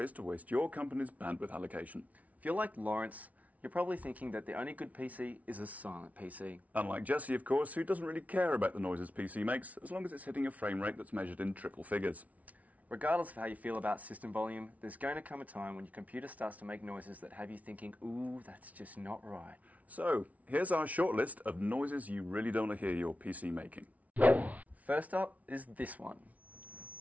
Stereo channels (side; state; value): left; late; 0.070 ms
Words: to waste your company's bandwidth allocation. If you're like Laurence, you're probably thinking that the only good PC is a silent PC. Unlike Jesse, of course, who doesn't really care about the noises PC makes, as long as it's hitting a frame rate that's measured in triple figures. Regardless of how you feel about system volume, there's going to come a time when your computer starts to make noises that have you thinking, ooh, that's just not right. So, here's our short list of noises you really don't want to hear your PC making. First up is this one.